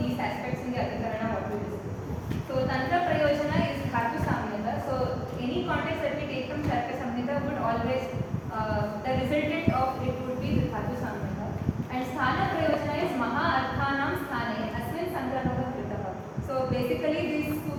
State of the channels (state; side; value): identical; both; correlation 1.00